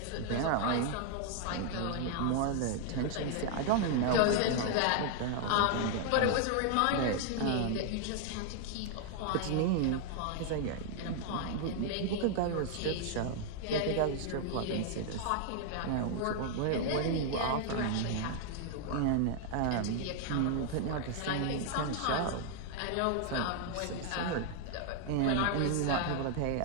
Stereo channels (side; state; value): both; different; correlation 0.00